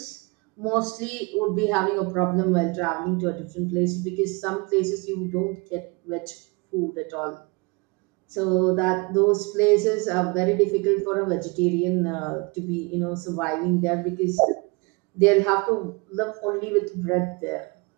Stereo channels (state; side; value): quieter; left; 28.5 dB